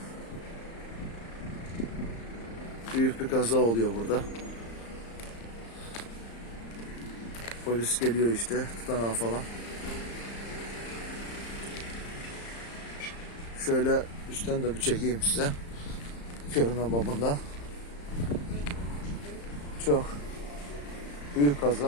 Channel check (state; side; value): late; right; 35 ms